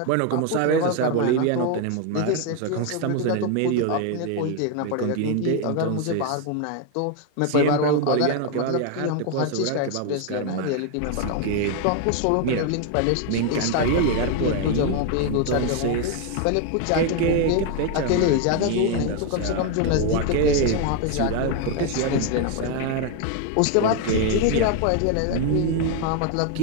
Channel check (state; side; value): different; both; correlation 0.01